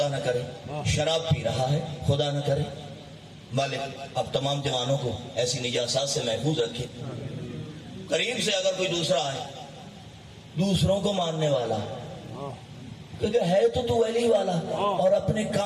نہ کرے، شراب پی رہا ہے، خدا نہ کرے۔ مالک اب تمام جوانوں کو ایسی نجاسات سے محفوظ رکھے۔ قریب سے اگر کوئی دوسرا آئے، دوسروں کو ماننے والا، کیونکہ ہے تو علی والا اور اپنے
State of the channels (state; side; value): identical; both; correlation 1.00